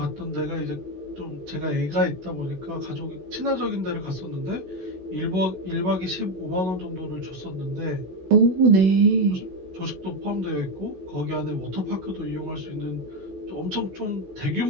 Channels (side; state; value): left; late; 16 ms